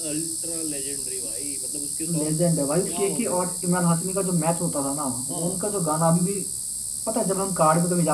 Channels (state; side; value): identical; both; correlation 1.00